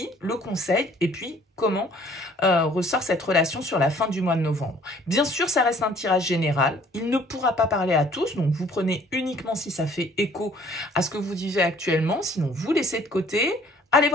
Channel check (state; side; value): normal; both; correlation 0.57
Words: le conseil, et puis comment ressort cette relation sur la fin du mois de novembre. Bien sûr, ça reste un tirage général. Il ne pourra pas parler à tous, donc vous prenez uniquement si ça fait écho à ce que vous vivez actuellement, sinon vous laissez de côté. Allez